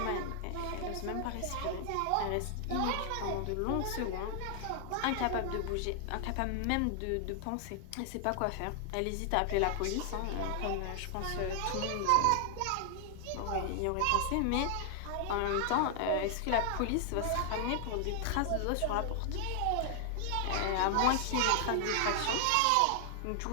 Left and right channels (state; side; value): different; both; correlation 0.00